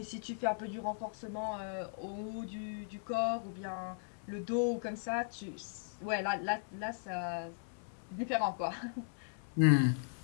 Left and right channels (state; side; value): silent; right; 53 dB below the other